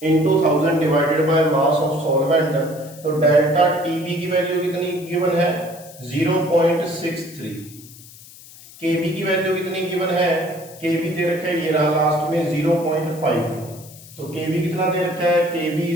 into 1000 divided by mass of solvent. तो डेल्टा टीबी की वैल्यू कितनी गिवन है 0.63, केबी की वैल्यू कितनी गिवन है, केबी दे रखा है ये रहा लास्ट में 0.5। तो केबी कितना दे रखा है, KB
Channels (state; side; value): noise; left; hiss, 20 dB below the sound